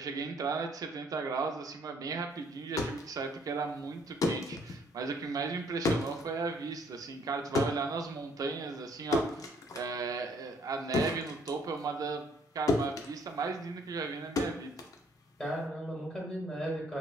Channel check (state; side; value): normal; both; correlation 0.63